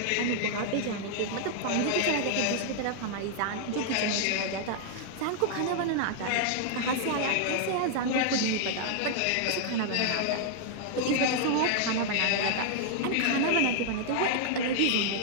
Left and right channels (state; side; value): different; both; correlation 0.00